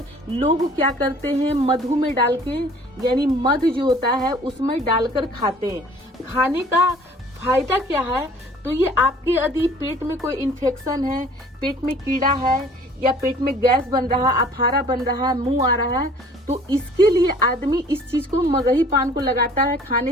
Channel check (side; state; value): both; normal; correlation 0.52